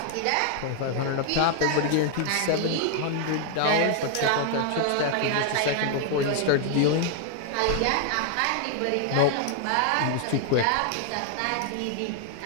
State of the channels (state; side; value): different; both; correlation 0.00